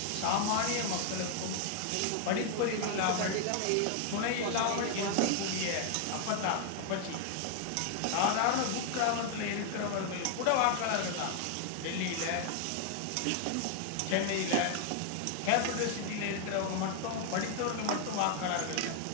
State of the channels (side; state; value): both; different; correlation 0.00